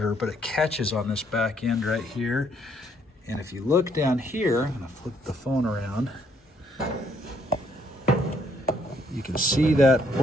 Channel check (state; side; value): normal; both; correlation 0.69